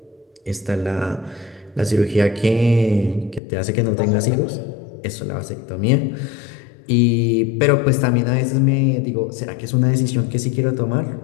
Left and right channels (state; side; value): drops out; right; at 3.4 s